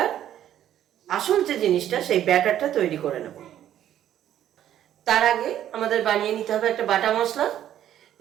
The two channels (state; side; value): quieter; left; 11.2 dB